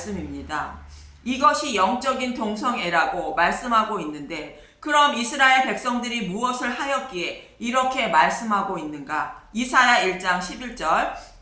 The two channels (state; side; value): identical; both; correlation 1.00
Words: 이것이 영적인 동성애라고 말씀하고 있는데 그럼 이스라엘 백성들이 무엇을 하였기에 이렇게 말씀하고 있는가? 이사야 1장 11절